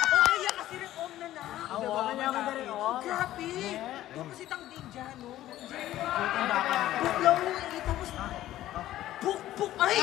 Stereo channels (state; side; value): quieter; right; 14.0 dB